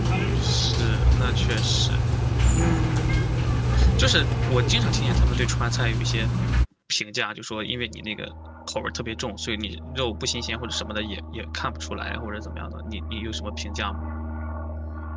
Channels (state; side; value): identical; both; correlation 1.00